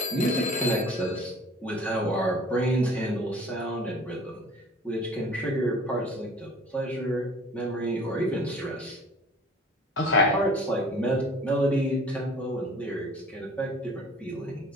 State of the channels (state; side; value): normal; both; correlation 0.48